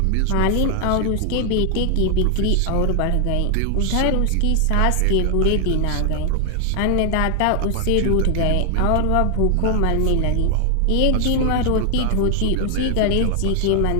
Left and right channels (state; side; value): different; both; correlation 0.00